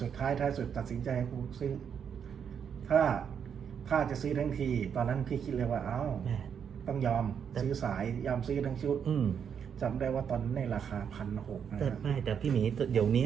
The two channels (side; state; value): left; quieter; 7.6 dB